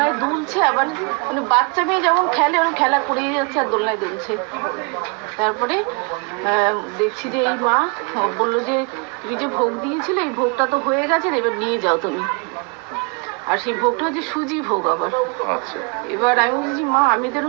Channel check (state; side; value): quieter; left; 33.9 dB